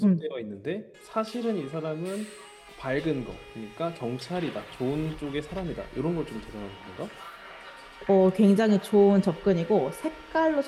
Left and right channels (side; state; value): both; identical; correlation 1.00